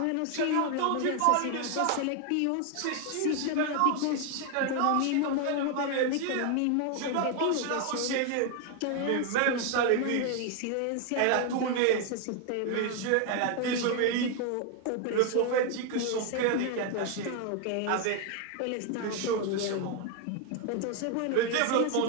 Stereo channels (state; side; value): different; both; correlation 0.01